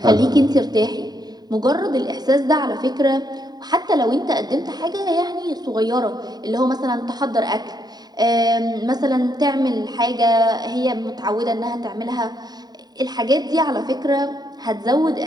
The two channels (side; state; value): left; late; 0.20 ms